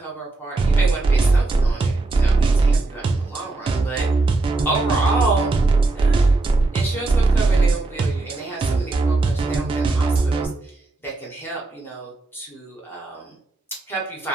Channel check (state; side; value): quieter; left; 3.2 dB